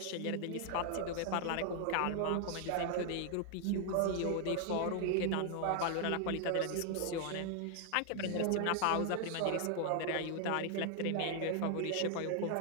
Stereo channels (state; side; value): different; both; correlation 0.00